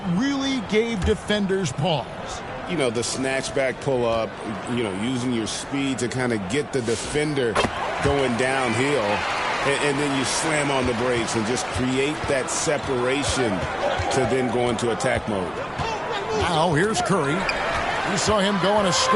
really gave defenders pause? You know, the snatch back pull up, you know, using your speed to kind of get the defender going downhill. and then you slam on the brakes and just create that separation to then go into attack mode. Now here's Curry. We saw him go on a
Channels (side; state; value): both; identical; correlation 1.00